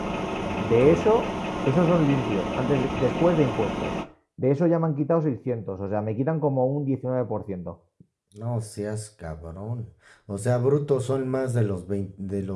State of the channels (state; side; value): identical; both; correlation 1.00